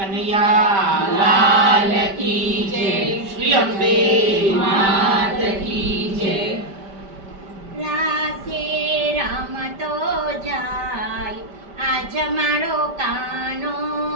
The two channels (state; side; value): late; left; 5.1 ms